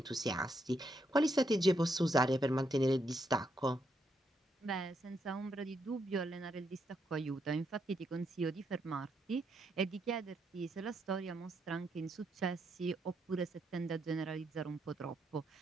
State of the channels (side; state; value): both; normal; correlation 0.78